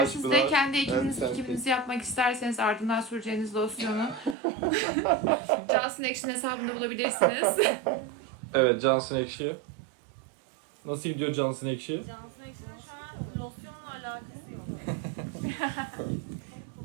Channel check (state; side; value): drops out; left; at 4.4 s